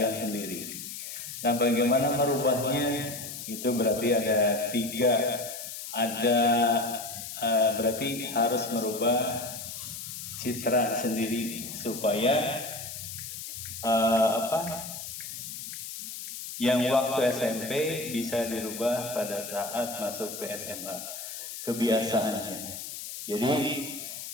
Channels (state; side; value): noise; left; hiss, 9 dB below the sound